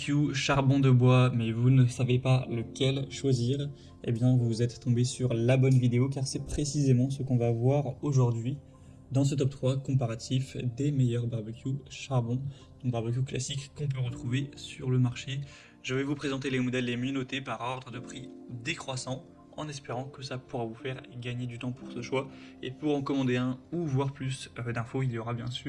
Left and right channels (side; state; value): both; identical; correlation 1.00